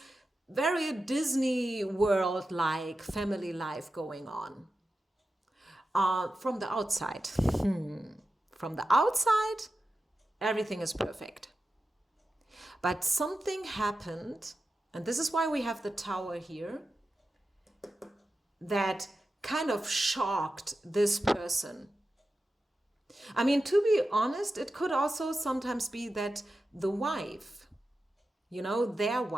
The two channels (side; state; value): both; normal; correlation 0.92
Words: very Disney world-like family life going on. From the outside. From the outside, everything is perfect. But something happened, and this is why we have the tower here, that kind of shocked this person. I mean, to be honest, it could also sometimes be that the wife, their